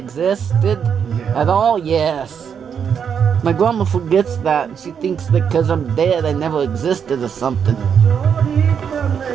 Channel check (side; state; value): left; quieter; 7.4 dB